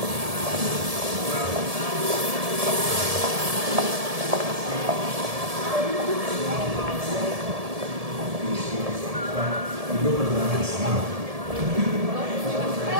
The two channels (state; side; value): late; left; 1.7 ms